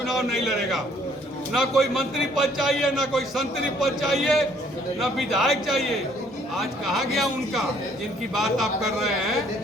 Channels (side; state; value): both; normal; correlation 0.62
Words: नहीं लड़ेगा। ना कोई मंत्री पद चाहिए, ना कोई संतरी पद चाहिए, ना विधायक चाहिए। आज कहाँ गया उनका जिनकी बात आप कर रहे हैं